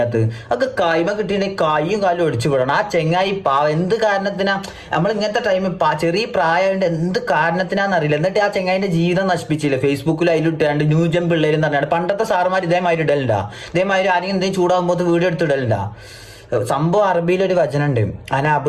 ഒക്കെ കായ്മ കിട്ടിയിട്ടുണ്ടെങ്കിൽ കൈയും കാലും ഒടിച്ചു വിടണം. ആ ചെങ്ങായി എന്ത് കാരണത്തിനാ നമ്മൾ ഇങ്ങനത്തെ ടൈമിൽ ചെറിയ പ്രായമായിട്ട് എന്ത് കാരണത്തിനാന്നറിയില്ല. എന്നിട്ട് ആ ചെങ്ങായിന്റെ ജീവിതം നശിപ്പിച്ചില്ല. ഫേസ്ബുക്കിൽ അതിലിട്ടാണ്ട് ന്യൂജൻ പിള്ളേരും പറഞ്ഞാണ്ട് പണ്ടത്തെ സാറുമാർ ഇതേമാതിരി ഇടലുണ്ടാ. ഇതേമാതിരി ആരെങ്കിലും എന്തെങ്കിലും ചൂടാകുമ്പോൾ വീഡിയോ എടുത്തിടലുണ്ടാ. സംഭവം അറബിയിലൊരു വചനുണ്ട്,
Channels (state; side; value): identical; both; correlation 1.00